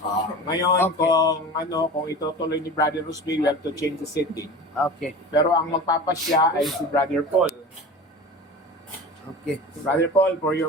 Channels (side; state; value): both; normal; correlation 0.34